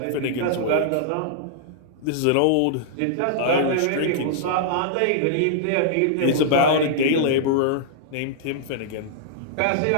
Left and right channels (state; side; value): different; both; correlation -0.01